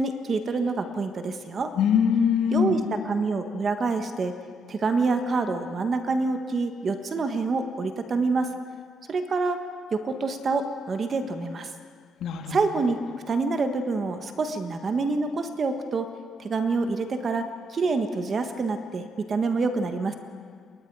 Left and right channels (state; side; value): normal; both; correlation 0.77